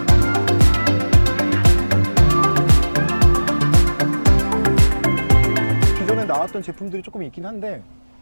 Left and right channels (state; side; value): inverted; both; correlation -1.00